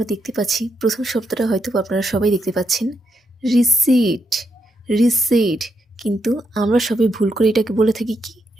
দেখতে পাচ্ছি প্রথম শব্দটা হয়তো আপনারা সবাই দেখতে পাচ্ছেন রিসিট রিসিট কিন্তু আমরা সবাই ভুল করে এটাকে বলে থাকি কি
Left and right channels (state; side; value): normal; both; correlation 0.79